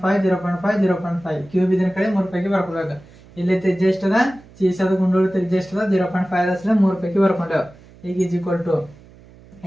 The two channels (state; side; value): noise; right; hum, 24 dB below the sound